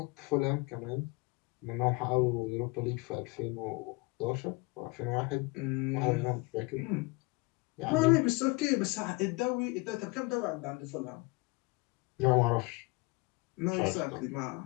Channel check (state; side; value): quieter; right; 25.5 dB